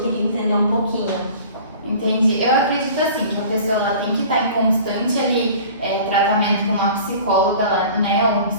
entender um pouquinho. Entendi. Eu acredito assim, que a pessoa ela tem que estar em constante ali, tratamento com uma psicóloga, né, ou um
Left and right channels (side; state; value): both; inverted; correlation -0.44